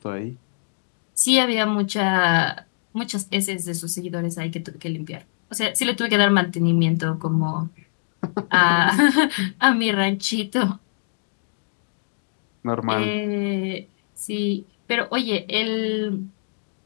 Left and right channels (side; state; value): right; silent; digital silence